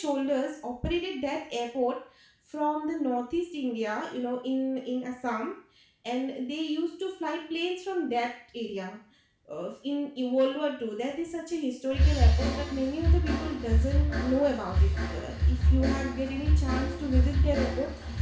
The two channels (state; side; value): identical; both; correlation 1.00